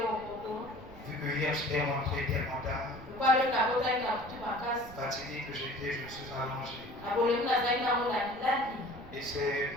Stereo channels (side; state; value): right; noise; rumble, 18 dB below the sound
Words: Vu que hier j'étais rentré tellement tard, fatigué que j'étais, je me suis allongé. Et c'est